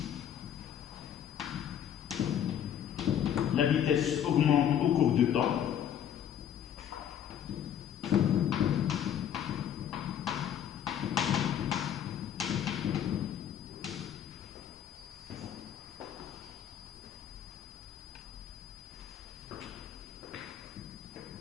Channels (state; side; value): quieter; right; 9.7 dB